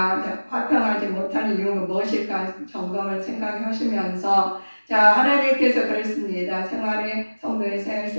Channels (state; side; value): inverted; both; correlation -1.00